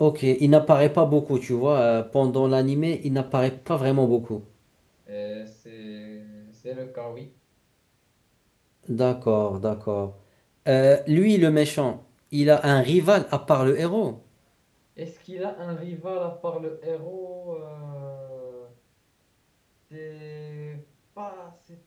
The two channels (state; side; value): identical; both; correlation 1.00